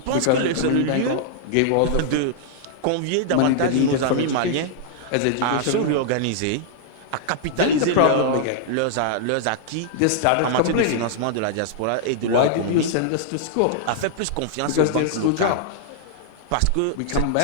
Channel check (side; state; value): both; different; correlation -0.01